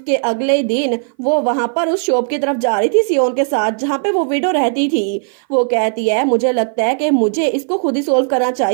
अगले दिन वो वहां पर उस शॉप की तरफ जा रही थी सियोन के साथ जहां पे वो विडो रहती थी। वो कहती है मुझे लगता है कि मुझे इसको खुद ही सोल्व करना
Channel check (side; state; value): left; silent; 58 dB below the other